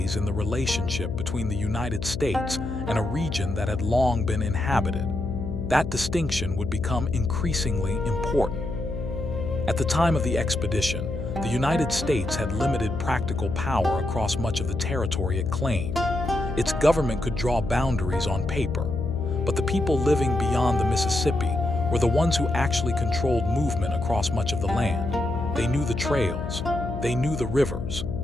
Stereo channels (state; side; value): noise; left; hum, 6 dB below the sound